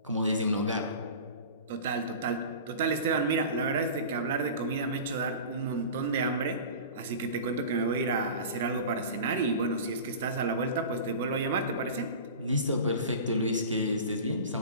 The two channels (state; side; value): inverted; both; correlation -0.35